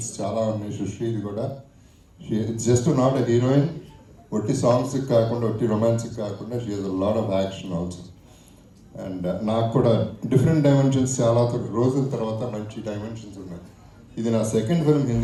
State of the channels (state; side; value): identical; both; correlation 1.00